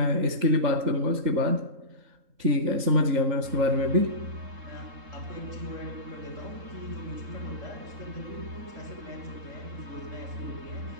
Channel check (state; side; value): late; left; 3.8 ms